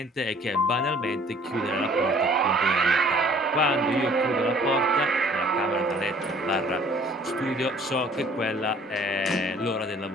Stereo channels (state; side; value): normal; both; correlation 0.55